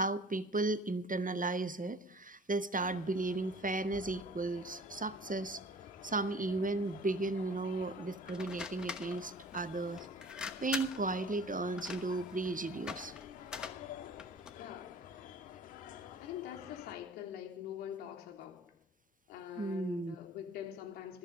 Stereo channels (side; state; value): both; normal; correlation 0.47